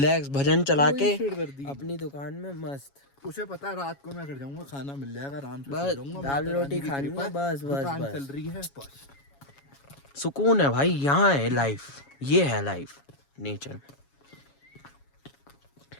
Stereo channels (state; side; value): late; right; 7.2 ms